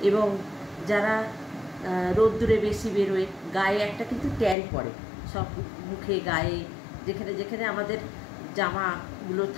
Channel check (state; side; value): drops out; right; at 4.5 s